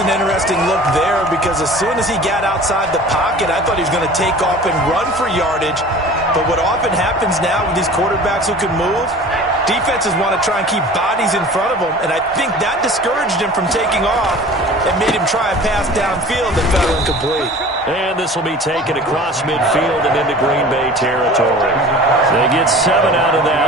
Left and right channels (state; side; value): normal; both; correlation 0.42